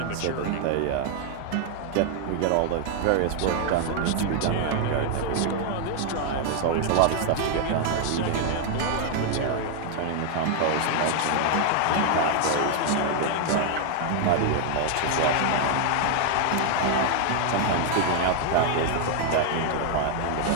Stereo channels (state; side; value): different; both; correlation 0.00